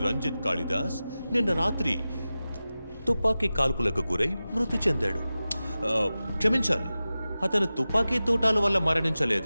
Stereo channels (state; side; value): inverted; both; correlation -0.95